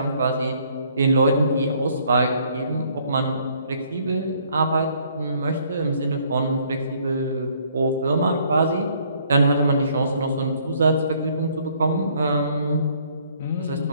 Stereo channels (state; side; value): inverted; both; correlation -0.63